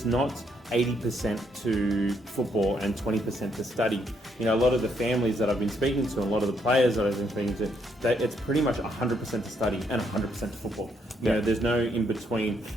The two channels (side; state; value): both; normal; correlation 0.74